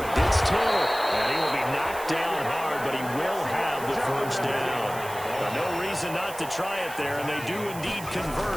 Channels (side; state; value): right; noise; hiss, 14 dB below the sound